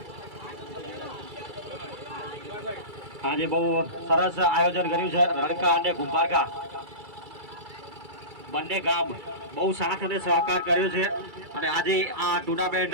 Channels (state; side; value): late; left; 2.3 ms